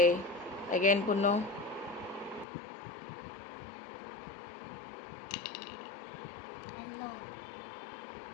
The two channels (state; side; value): drops out; right; at 2.5 s